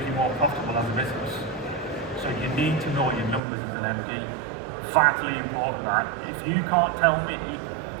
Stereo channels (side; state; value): left; drops out; at 3.4 s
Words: you more profitable as a business. So you need to know your numbers as an MD. Vitally important that. If you can't tell me